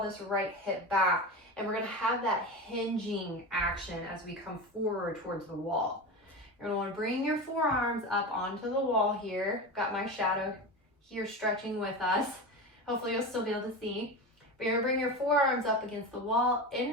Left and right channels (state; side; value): normal; both; correlation 0.24